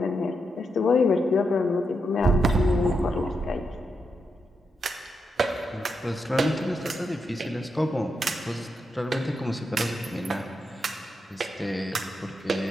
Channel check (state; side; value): normal; both; correlation 0.84